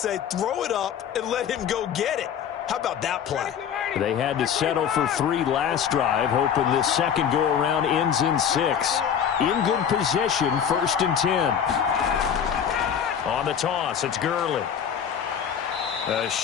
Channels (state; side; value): quieter; right; 8.2 dB